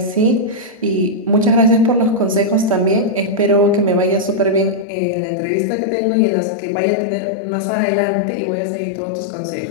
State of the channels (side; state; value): right; drops out; at 4.9 s